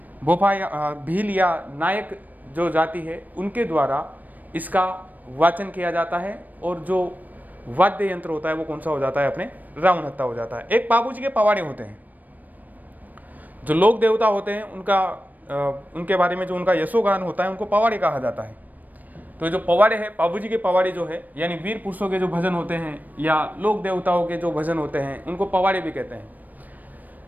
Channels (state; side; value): late; left; 0.083 ms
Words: भोपा या भील या नायक जो जाति है उनके द्वारा इसका वाचन किया जाता है। और जो वाद्य यंत्र होता है वो कौन सा हो जाता है, अपने रावण हत्ता हो जाता है। एक पाबूजी के पवाड़े होते हैं, जो लोक देवता होते हैं उनके बारे में जो उनका यशोगान होता है उनको पवाड़े कहा जाता है। तो जो पवाड़े है, पाबूजी के पवाड़े जो है यानी वीर पुरुषों के जो भजन होते हैं या लोक देवताओं के जो भजन होते हैं उनको पवाड़े भी कहते हैं।